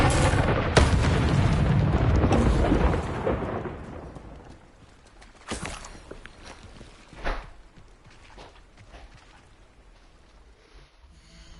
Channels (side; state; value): both; identical; correlation 1.00